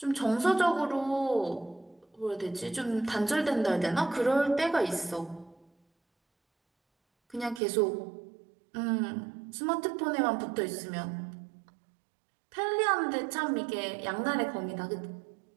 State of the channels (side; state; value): left; drops out; at 7.6 s